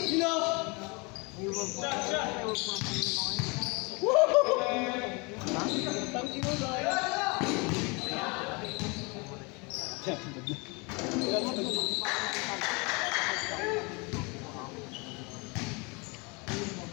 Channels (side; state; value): right; quieter; 29.2 dB